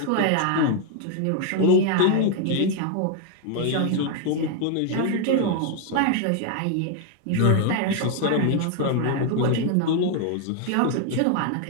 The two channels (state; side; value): different; both; correlation 0.00